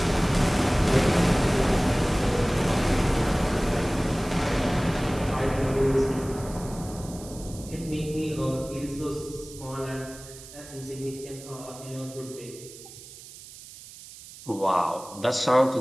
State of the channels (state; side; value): noise; right; hiss, 17 dB below the sound